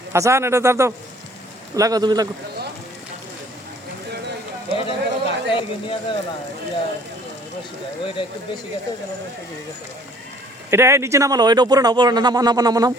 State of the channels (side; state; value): both; normal; correlation 0.56